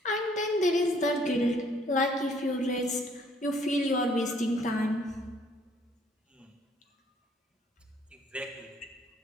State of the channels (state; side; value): normal; both; correlation 0.62